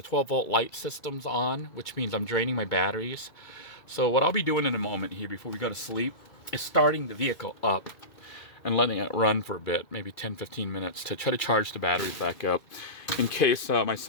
light systems on, which means I'm draining my batteries. So what I'll be doing in a moment here before we go to sleep is starting the vehicle up and letting it run for a bit, maybe 10-15 minutes, to try to charge the batteries back up in case my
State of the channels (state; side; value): late; right; 2.2 ms